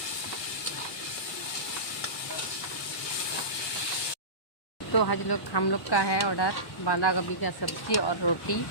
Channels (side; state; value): right; late; 1.2 ms